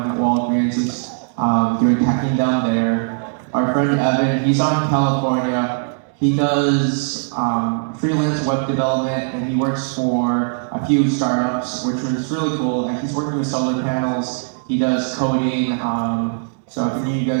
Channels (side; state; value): left; silent; digital silence